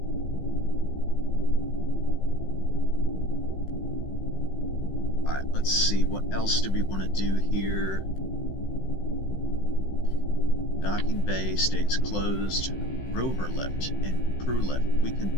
Alright, let's see, what else do we want to do here? Docking bay stays closed. Rover lift and crew lift. We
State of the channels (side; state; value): right; late; 15 ms